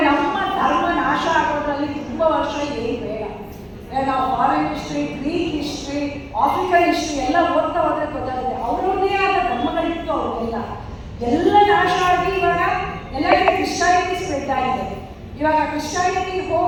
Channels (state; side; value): identical; both; correlation 1.00